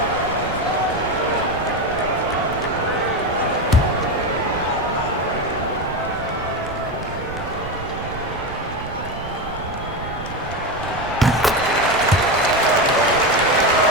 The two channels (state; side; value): noise; right; rumble, 12 dB below the sound